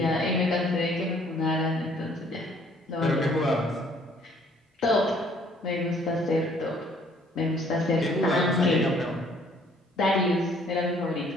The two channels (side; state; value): both; normal; correlation 0.61